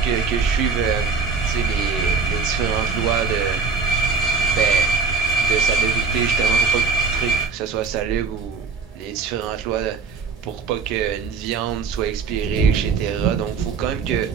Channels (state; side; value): quieter; left; 5.1 dB